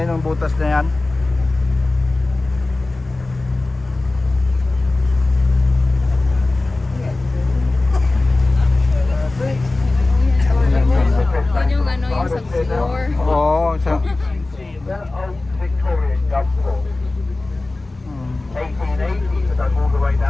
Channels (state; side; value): quieter; right; 3.1 dB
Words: yun, yung butas na yan. Yun yung ano, yung sa floor. Oo, sa... That old Victorian gunport. 1880, but dug all the way